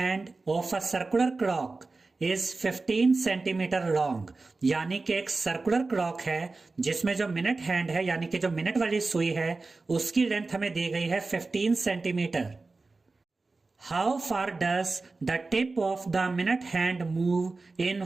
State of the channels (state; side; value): quieter; left; 3.7 dB